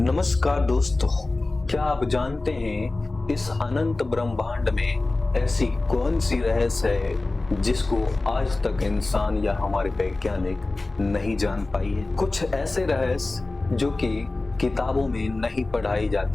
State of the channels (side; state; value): right; quieter; 3.2 dB